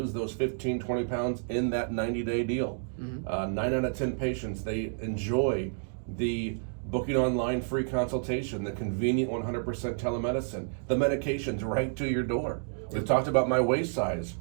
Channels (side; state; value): left; silent; digital silence